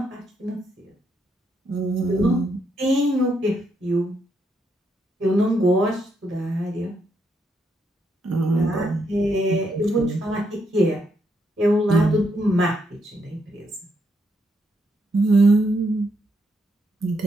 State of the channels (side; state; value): both; normal; correlation 0.77